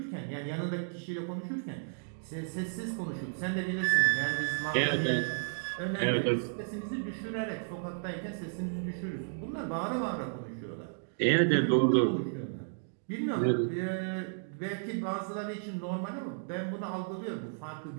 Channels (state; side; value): silent; left; digital silence